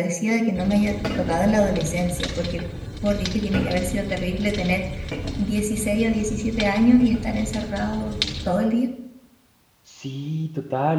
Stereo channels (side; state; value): both; identical; correlation 1.00